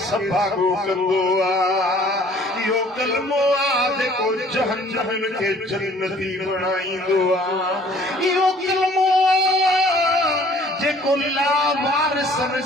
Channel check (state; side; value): normal; both; correlation 0.55